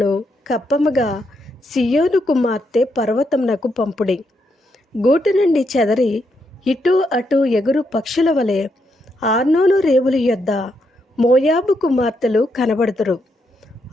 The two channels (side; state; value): both; normal; correlation 0.79